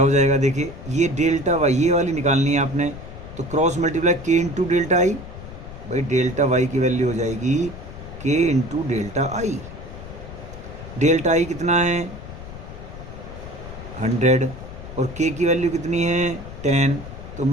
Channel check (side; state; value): left; noise; rumble, 13 dB below the sound